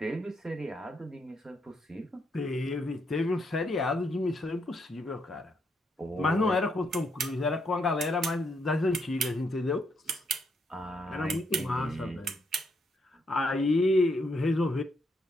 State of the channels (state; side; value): normal; both; correlation 0.76